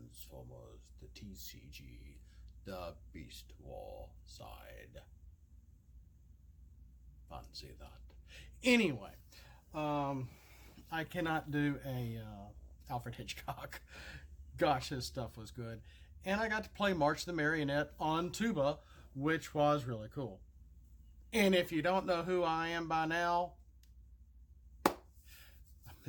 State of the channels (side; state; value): both; identical; correlation 1.00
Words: the TCG, the Beast War side. Fancy that. Anyway, I cannot do a Alfred Hitchcock. Gosh, his stuff was good. And I got to play March the Marionette on tuba, which was really cool. And if you don't know who I am by now, I